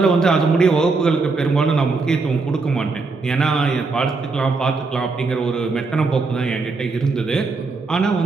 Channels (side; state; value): left; quieter; 4.0 dB